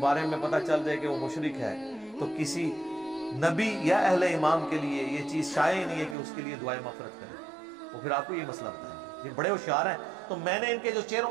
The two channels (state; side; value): drops out; left; at 6.2 s